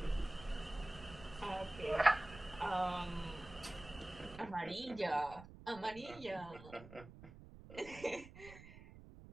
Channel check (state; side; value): noise; right; rumble, 16 dB below the sound